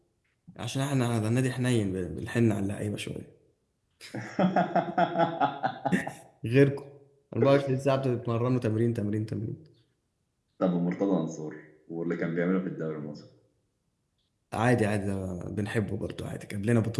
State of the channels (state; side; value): identical; both; correlation 1.00